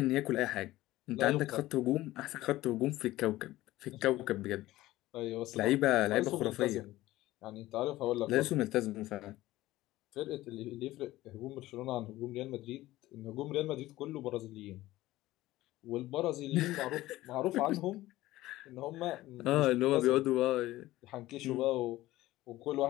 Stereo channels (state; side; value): quieter; right; 16.7 dB